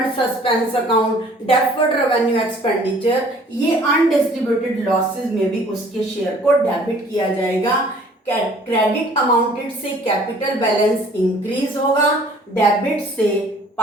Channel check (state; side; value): normal; both; correlation 0.54